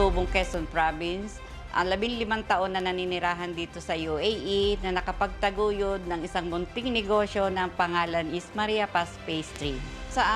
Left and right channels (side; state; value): both; identical; correlation 1.00